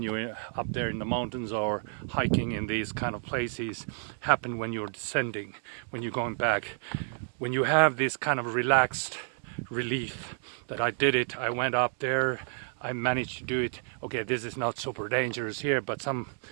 you're up there in the mountains or hiking in these kind of places happen when you're descending, when you're going back. When you have this kind of relaxed relief that I did it, I went up there, I managed to do it. Okay, this is not super dangerous here, but some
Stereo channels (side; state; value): left; silent; 58 dB below the other